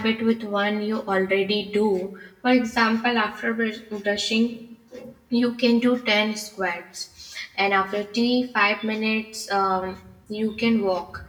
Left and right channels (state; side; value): identical; both; correlation 1.00